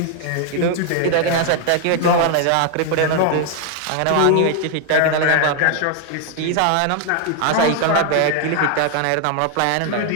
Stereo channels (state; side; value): different; both; correlation 0.00